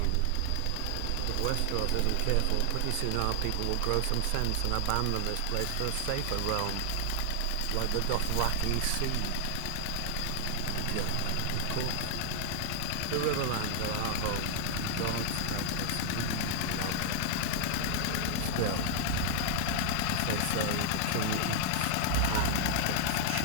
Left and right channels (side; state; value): both; different; correlation 0.00